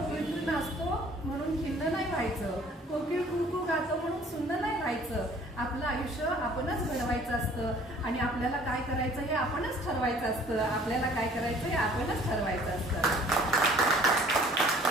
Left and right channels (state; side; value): normal; both; correlation 0.54